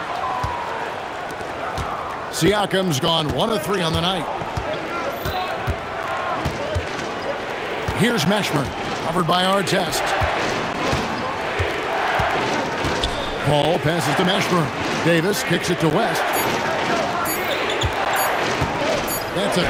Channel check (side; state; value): both; identical; correlation 1.00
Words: Siakam's gone 1 of 3 on the night. Here's Mashburn, covered by Artest. Paul passes to Mashburn. Davis kicks it to West. That's